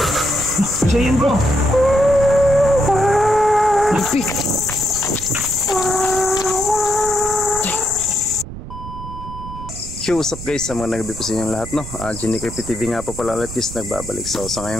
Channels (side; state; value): right; noise; rumble, 11 dB below the sound